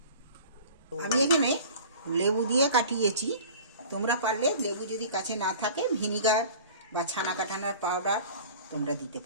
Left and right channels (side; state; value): both; inverted; correlation -0.42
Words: আমি এখানে লেবু দিয়ে কাটিয়েছি। তোমরা পারলে লেবু যদি কাছে না থাকে, ভিনিগার বা ছানা কাটানোর পাউডার তোমরা দিতে